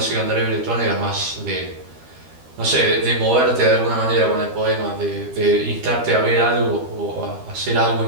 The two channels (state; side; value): late; left; 13 ms